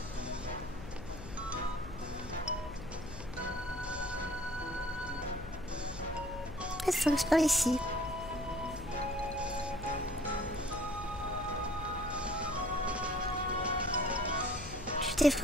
Red Fox par ici. Tu t'es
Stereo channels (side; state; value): left; noise; hum, 11 dB below the sound